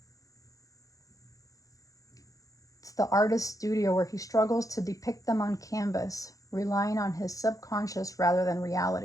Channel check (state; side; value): late; right; 0.16 ms